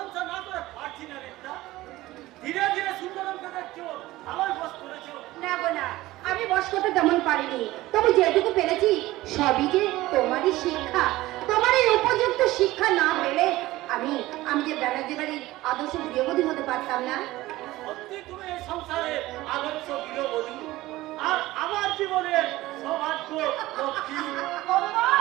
না করে পারছি না রেখা। ধীরে ধীরে সুন্দরমকে দেখছো ভালোই বস করেছো। না গো না, আমি বস করতে তেমন পারিনি, তবে যেটুকু পেরেছি সবই যে তোমারই শিক্ষা। তোমার এই উপযুক্ত শিক্ষা না পেলে আমি আমি যে ব্যানার্জি বাড়ির আদর্শ গৃহবধূ হতে পারতাম না। সত্যি তুমি এই সংসারে আদর্শ গৃহবধূ, আর আমার জীবনের সৌভাগ্য লক্ষ্মী।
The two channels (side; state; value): left; quieter; 17.6 dB